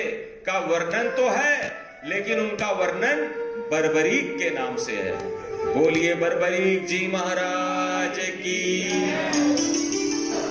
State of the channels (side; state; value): both; identical; correlation 1.00